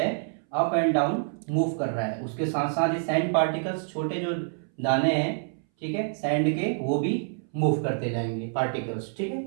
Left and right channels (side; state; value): left; silent; 60 dB below the other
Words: अप एंड डाउन मूव कर रहा है। उसके साथ साथ ये सैंड पार्टिकल्स, छोटे जो दाने हैं, ठीक है, सैंड के, वो भी मूव करते जाएंगे, पार्टिकल्स, ठीक